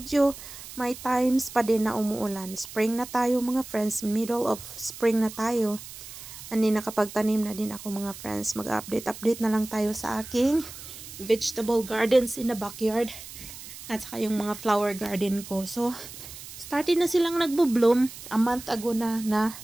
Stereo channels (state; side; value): noise; right; hiss, 14 dB below the sound